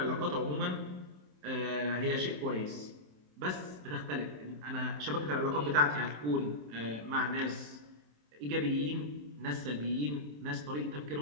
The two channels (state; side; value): late; left; 27 ms